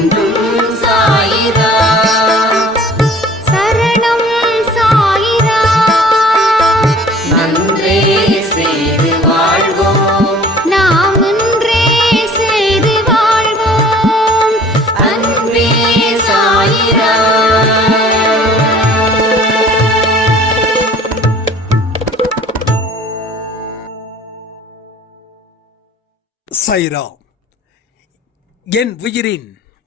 சாய்ராம். என் உயிரின்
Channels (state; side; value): normal; both; correlation 0.50